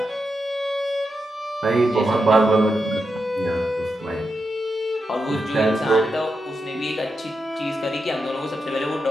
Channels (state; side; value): normal; both; correlation 0.87